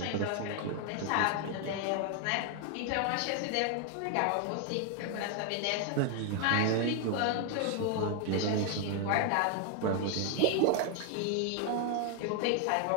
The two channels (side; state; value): both; different; correlation 0.00